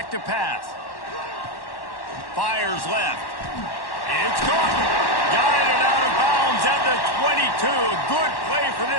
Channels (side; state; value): right; late; 1.1 ms